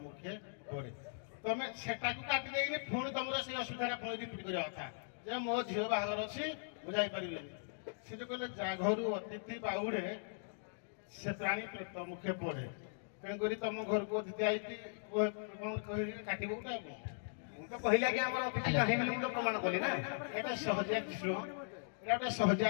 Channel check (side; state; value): right; silent; digital silence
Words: ମୁଖେ ପଡେ। ତମେ ସେଟାକୁ କାଟି ଦେଇକି ପୁଣି ତମର ସେଇ ଅସୁବିଧାଟା ପୁଣି ରିପିଟ୍ କରିବା କଥା ଯେ ମୋ ଝିଅ ବାହାଘର ଅଛି ମୁଁ ଯାଇପାରିବିନି। ସେ ଯୋଉ କହିଲେ ଯା ଘରୁ ଅତିଥି ବାହୁରେ ସେ ପ୍ରାଣୀ ପ୍ରତ ମୁଖେ ପଡେ ତେଣୁକରି ତମ ଘରକୁ ଅତିଥି ଆଇକି କଣ କହିକି କାଟିବ ଗୋଟେ ଆଉ କଣ। ମୁଁ ତ କହିଲି ଆଜ୍ଞା ଆମର ଅତିଥି ନାହିଁ ବୋଲି ମୁଁ ତ ପ୍ରମାଣ କଲି ନା। ଏଇଟା ସହଜିଆ ଜିନିଷ ଏଇଟା ଗୋଟେ ସହଜିଆ